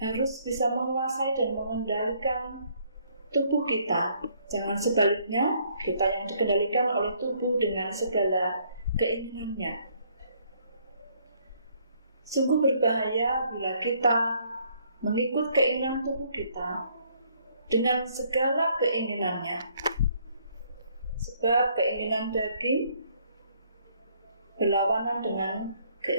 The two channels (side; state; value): both; inverted; correlation -0.66